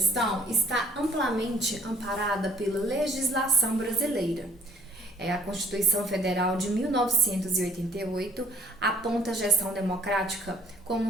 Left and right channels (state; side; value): normal; both; correlation 0.58